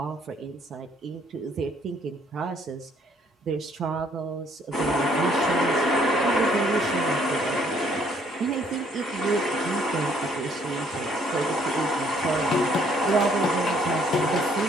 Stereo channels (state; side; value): normal; both; correlation 0.64